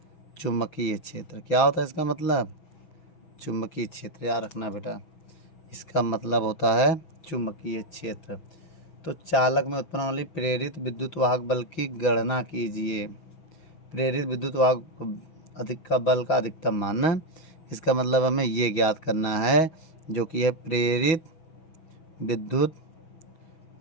चुंबकीय क्षेत्र। क्या होता है इसका मतलब, चुंबकीय क्षेत्र। याद रखना बेटा, इसका मतलब होता है चुंबकीय क्षेत्र। तो चालक में उत्पन्न वाली प्रेरित विद्युत वाहक बल की गणना कीजिए। प्रेरित विद्युत वाहक बल का अधिकतम मान, इसका मतलब हमें ये ज्ञात करना है जो कि है प्रेरित विद्युत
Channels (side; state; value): right; late; 6.2 ms